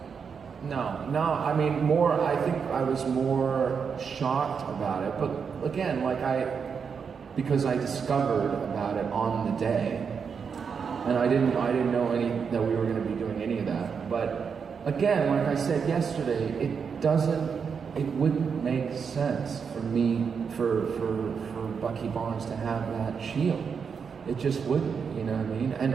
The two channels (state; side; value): quieter; left; 6.2 dB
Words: No, I mean, I think I was more shocked about it, but again, because I discovered about it on the day, and I didn't know that we were going to be doing any of that, but again, like I said yesterday, it wouldn't make sense for for Bucky Barnes to have that shield. It just wouldn't, you know what I mean? And